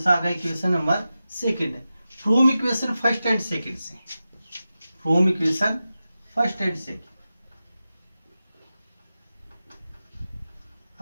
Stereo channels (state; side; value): inverted; both; correlation -0.93